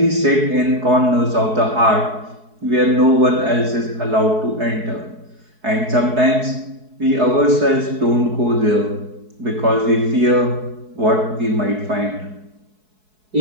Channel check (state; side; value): late; left; 4.7 ms